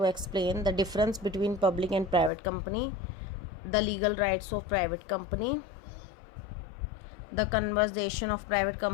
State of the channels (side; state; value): right; drops out; at 2.3 s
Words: explain the difference between public and private company, the legal rights of private company, the conversion of private